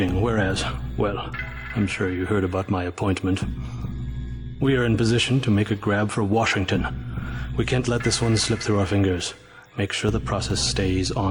whereas, well, I'm sure you heard about my appointment. We are in position to make a grab for Washington. We can't let this one slip through our fingers. Make sure the process stays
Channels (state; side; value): identical; both; correlation 1.00